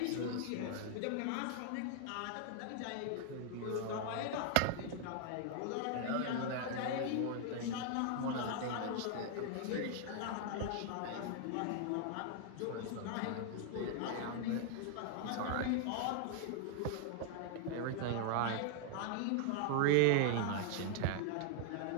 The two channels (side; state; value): both; different; correlation 0.00